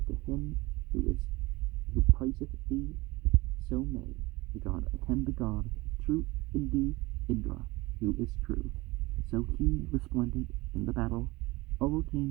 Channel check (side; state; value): left; quieter; 21.9 dB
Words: to him who praiseth thee. So may the god attend the god, true Hindu Indra, who is true. So he, resplendent in the battle,